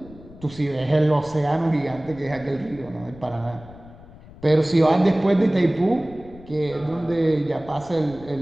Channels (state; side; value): noise; left; rumble, 20 dB below the sound